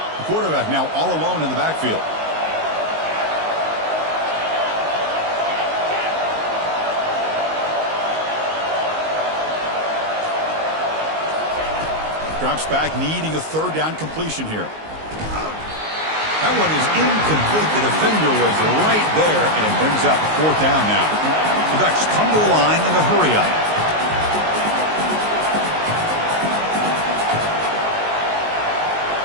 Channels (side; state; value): left; late; 19 ms